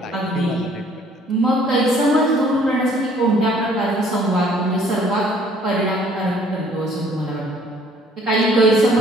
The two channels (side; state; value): both; normal; correlation 0.59